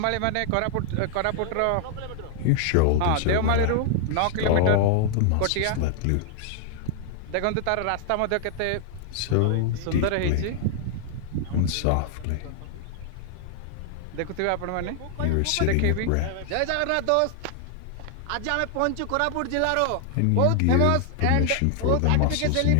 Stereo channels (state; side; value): different; both; correlation 0.00